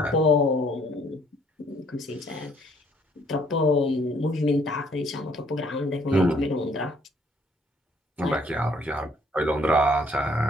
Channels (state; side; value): normal; both; correlation 0.64